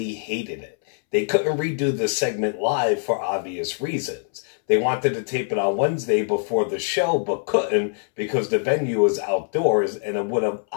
hated it. They couldn't redo the segment live for obvious reasons. They wanted to tape it on Wednesday before the show, but couldn't because the venue was outdoors and it would have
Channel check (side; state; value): right; silent; 63 dB below the other